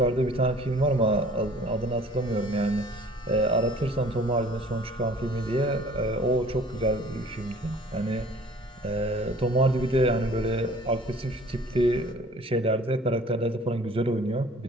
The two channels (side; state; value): both; normal; correlation 0.51